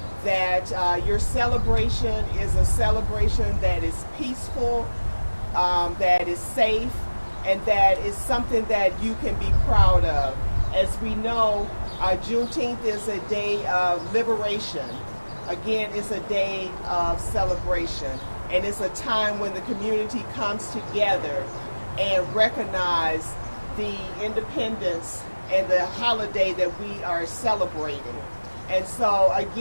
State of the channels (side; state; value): both; inverted; correlation -1.00